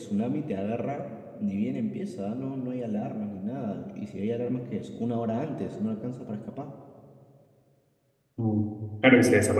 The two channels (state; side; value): identical; both; correlation 1.00